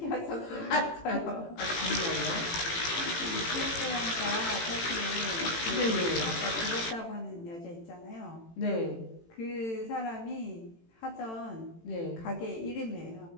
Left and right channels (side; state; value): right; late; 18 ms